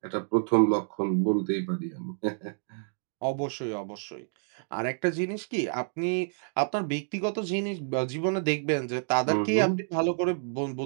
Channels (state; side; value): silent; left; digital silence